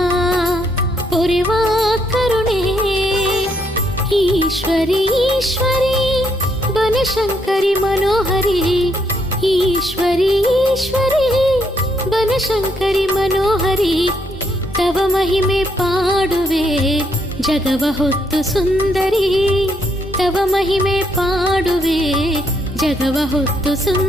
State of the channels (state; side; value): normal; both; correlation 0.74